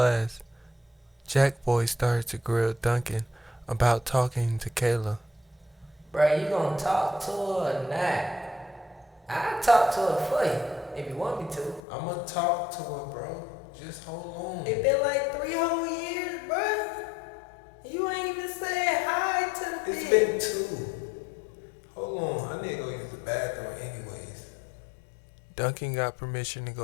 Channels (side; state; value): right; drops out; at 11.8 s